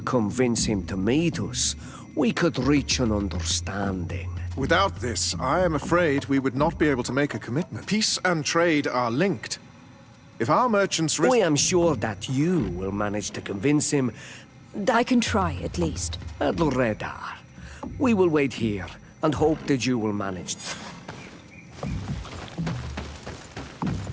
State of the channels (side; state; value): both; identical; correlation 1.00